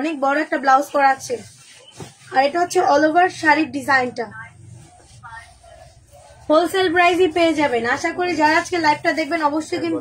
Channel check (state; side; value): identical; both; correlation 1.00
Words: বড় একটা ব্লাউজ করা আছে। আর এটা হচ্ছে অল ওভার শাড়ির ডিজাইনটা। হোলসেল প্রাইসই পেয়ে যাবেন। আশা করি যারা আজকে লাইভটা দেখবেন অবশ্যই